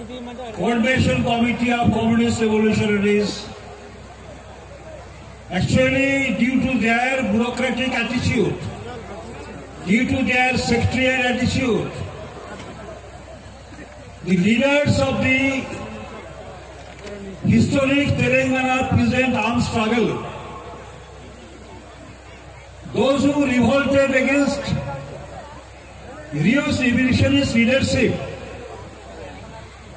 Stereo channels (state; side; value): identical; both; correlation 1.00